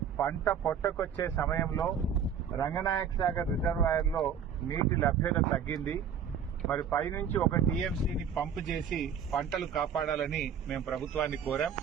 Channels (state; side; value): quieter; left; 7.5 dB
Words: పంట పొట్టకొచ్చే సమయంలో రంగనాయక సాగర్ రిజర్వాయర్లో నీటి లభ్యత తగ్గింది. మరి పైనుంచి 1 టీఎంసీని పంపు చేసి పంటలు కాపాడాలని మేము ప్రభుత్వాన్ని కోరాం.